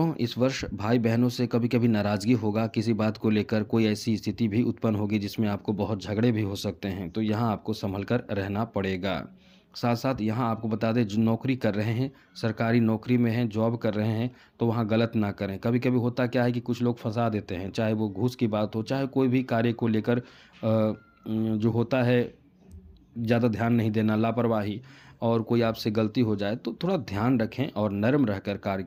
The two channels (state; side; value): identical; both; correlation 1.00